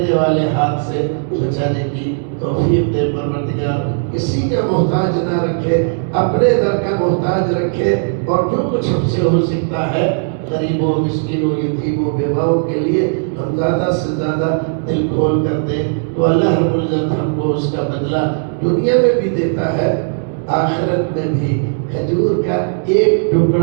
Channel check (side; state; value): left; silent; digital silence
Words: والے ہاتھ سے بچانے کی توفیق دے پروردگار، کسی کا محتاج نہ رکھے، اپنے در کا محتاج رکھے، اور جو کچھ ہم سے ہو سکتا ہے غریبوں، مسکینوں، یتیموں، بیواؤں کے لیے ہم زیادہ سے زیادہ دل کھول کر دیں، تو اللہ رب العزت ہم کو اس کا بدلہ دنیا میں بھی دیتا ہے، آخرت میں بھی۔ کھجور کا ایک